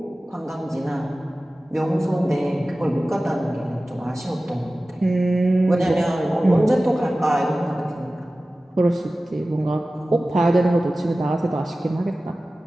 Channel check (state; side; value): normal; both; correlation 0.96